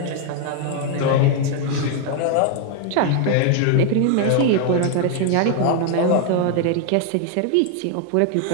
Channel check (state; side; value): different; both; correlation 0.00